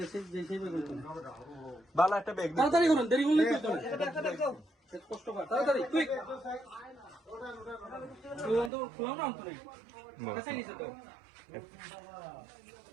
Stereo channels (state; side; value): drops out; left; at 8.7 s